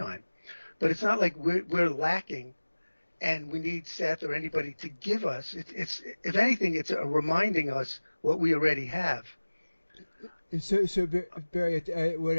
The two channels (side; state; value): both; inverted; correlation -1.00